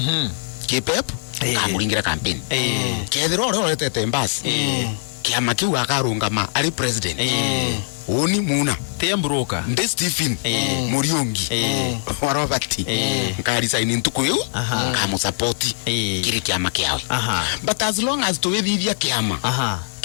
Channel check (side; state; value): right; silent; digital silence